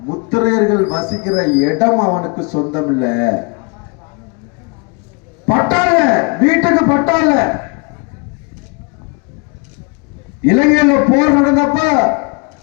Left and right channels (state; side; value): quieter; right; 32.6 dB